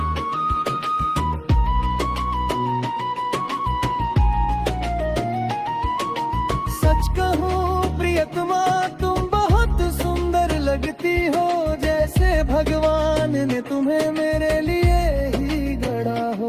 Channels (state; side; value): identical; both; correlation 1.00